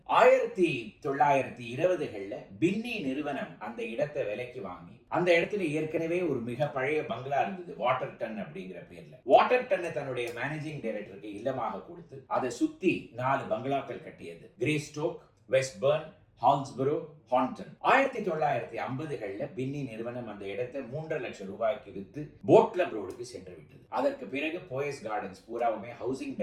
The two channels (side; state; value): both; identical; correlation 1.00